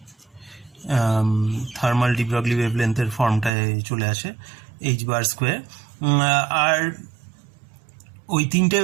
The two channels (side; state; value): left; drops out; at 3.5 s